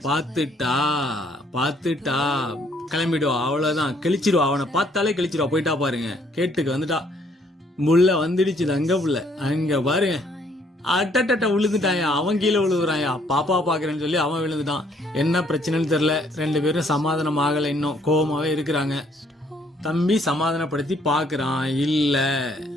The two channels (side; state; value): both; normal; correlation 0.66